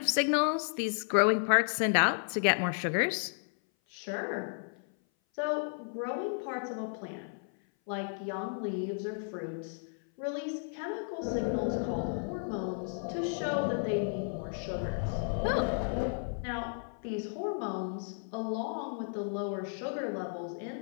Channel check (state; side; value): silent; right; 56 dB below the other